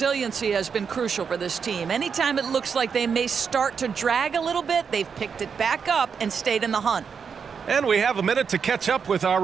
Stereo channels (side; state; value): left; quieter; 6.3 dB